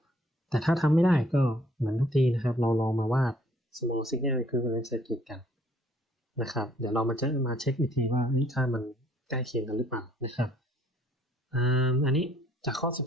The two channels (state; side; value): normal; both; correlation 0.62